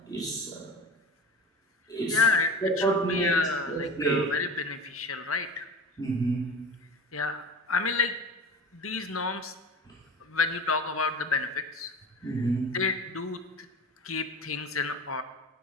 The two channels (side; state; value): both; normal; correlation 0.33